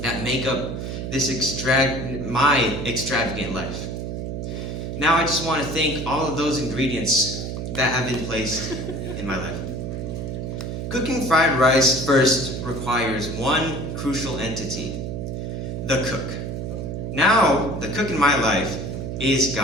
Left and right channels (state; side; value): noise; right; hum, 5 dB below the sound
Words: that make up this my extravagant life. Now I just want to thank all of those ingredients that have been placed in my life. Cooking fried rice first requires one crucial entity, the cook. Now, the cook in my life is